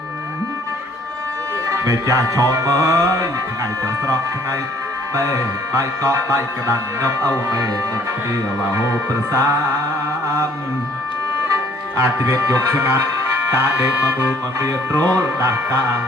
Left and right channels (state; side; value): normal; both; correlation 0.59